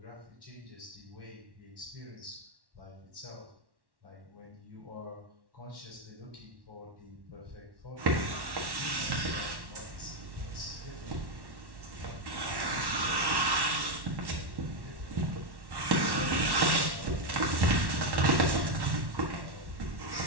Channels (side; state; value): left; late; 1.1 ms